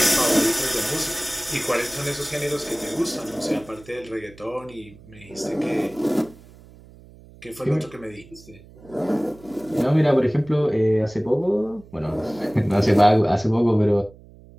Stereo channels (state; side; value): noise; right; hum, 22 dB below the sound